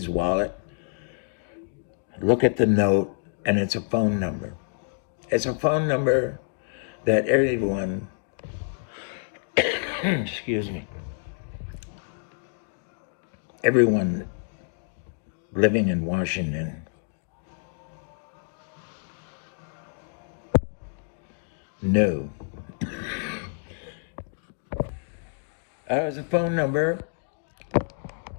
wallet, look at the note, and it's a phone number. It's a phone number that everyone, excuse me, everyone living in Washington knew. It was a phone number,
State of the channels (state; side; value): silent; right; digital silence